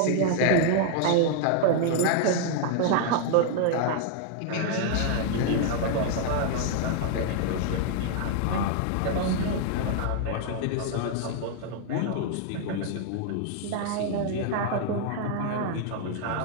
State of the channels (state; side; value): different; both; correlation 0.00